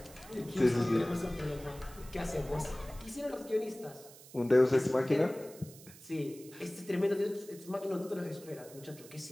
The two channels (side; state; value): right; noise; hiss, 19 dB below the sound